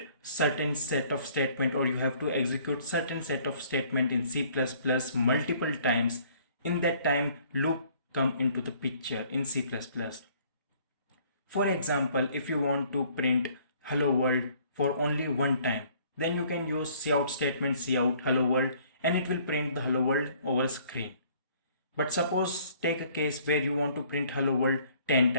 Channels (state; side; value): inverted; both; correlation -0.58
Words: certain set of statement or you have to execute certain set of statement in C++ multiple times. In that time, loop come into the picture in C++. For example, if you want to print hello world for only one time, then you can use cout statement cout hello world and it will print the hello world over screen. But suppose take a case where you want to print hello world 10